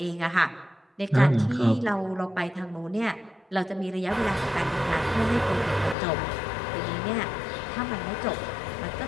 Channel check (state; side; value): drops out; right; at 6.0 s